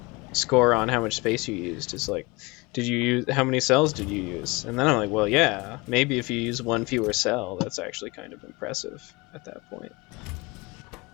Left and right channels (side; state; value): right; quieter; 24.8 dB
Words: score on how much space you used is like, how many cells did you use? And then I'm like, well, yeah, maybe if you use one fewer cell, that's actually kind of impressive at that point.